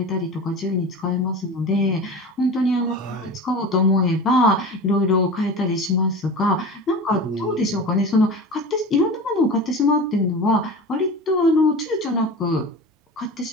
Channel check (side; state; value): both; normal; correlation 0.32